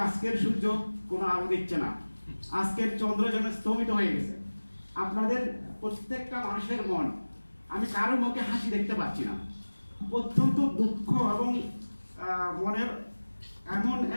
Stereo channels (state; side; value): inverted; both; correlation -1.00